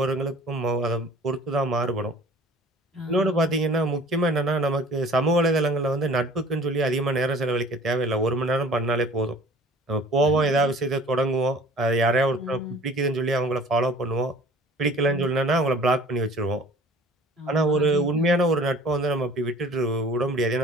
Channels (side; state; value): both; normal; correlation 0.48